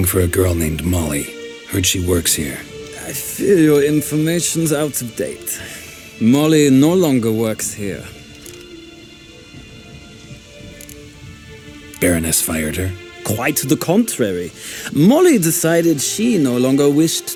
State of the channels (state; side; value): identical; both; correlation 1.00